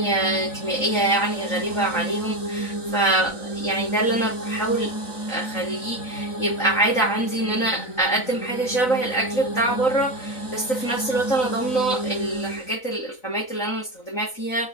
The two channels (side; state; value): right; late; 3.9 ms